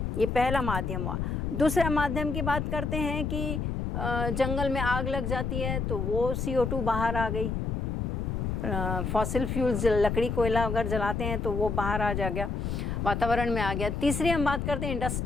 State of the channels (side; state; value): left; noise; rumble, 1 dB below the sound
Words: ये पहला माध्यम हुआ। दूसरा माध्यम की बात करते हैं कि जंगल में आग लग जाती है तो वो CO2 बाहर आ गई। फॉसिल फ्यूल्स लकड़ी कोयला अगर जलाते हैं तो वो बाहर आ जा गया, वातावरण में आ गया। तीसरी हम बात करते हैं